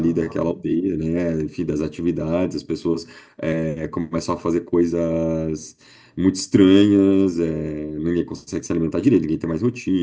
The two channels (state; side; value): identical; both; correlation 1.00